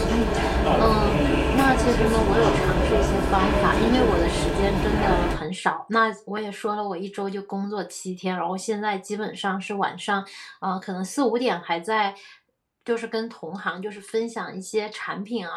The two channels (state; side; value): identical; both; correlation 1.00